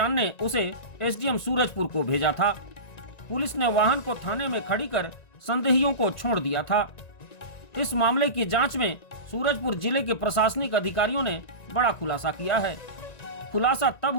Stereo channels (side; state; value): right; late; 1.9 ms